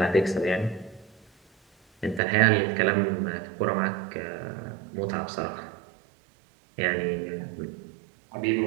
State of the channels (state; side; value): drops out; left; at 2.2 s